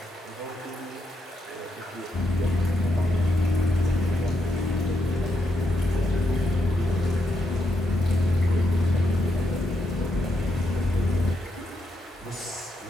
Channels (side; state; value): both; normal; correlation 0.81